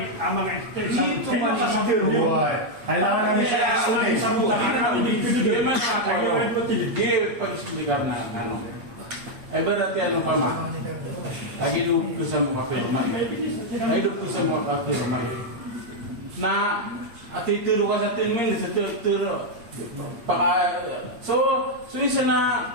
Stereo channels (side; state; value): left; late; 8.5 ms